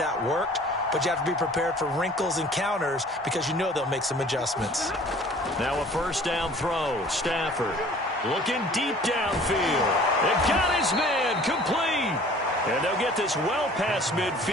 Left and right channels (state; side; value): normal; both; correlation 0.49